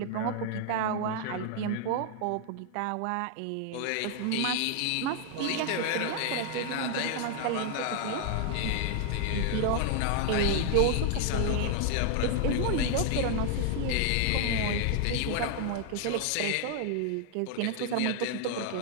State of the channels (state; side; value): different; both; correlation 0.00